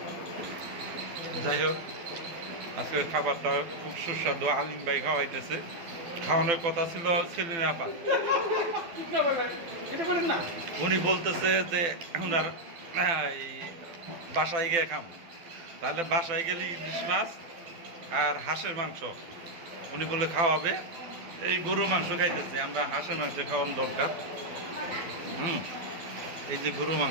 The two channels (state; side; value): late; left; 12 ms